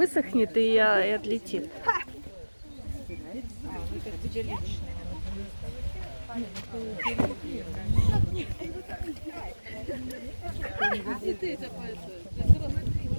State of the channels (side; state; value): both; inverted; correlation -1.00